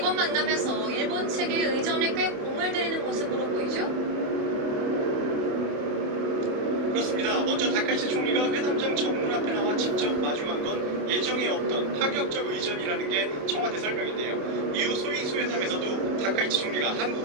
만남에서 일본 측의 의전에 꽤 공을 들이는 모습으로 보이죠? 그렇습니다. 먼저 다카이치 총리가 회담장 정문 앞에 나와 직접 마주한 건 예정에 없던 파격적 의전이라는 게 청와대 설명인데요. 이후 소위 회담에서도 다카이치 총리가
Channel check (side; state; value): left; late; 28 ms